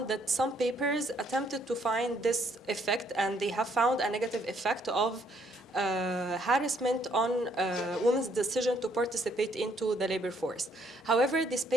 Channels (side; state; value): both; normal; correlation 0.68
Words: that some papers attempted to find this effect, and they have found a negative effect of harassment on women's decision to participate into the labor force. However, these